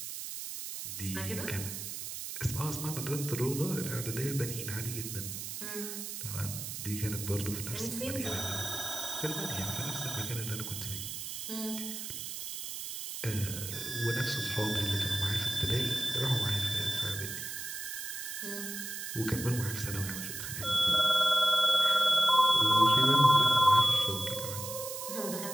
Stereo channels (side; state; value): right; noise; hiss, 7 dB below the sound